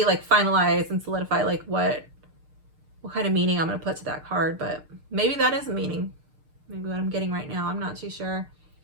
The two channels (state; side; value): late; left; 6.5 ms